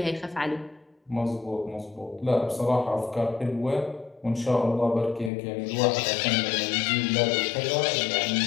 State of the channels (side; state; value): right; drops out; at 5.3 s